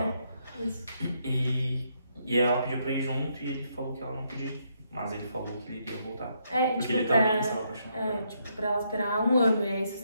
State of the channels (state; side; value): inverted; both; correlation -0.76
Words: Isso. E ela pediu pra ir junto e ele falou que ela não podia ir. Mas ele falou que ele iria voltar. Porque tipo, ele também estava apaixonado. Tipo, pra ela esperar um ano. E aí, se os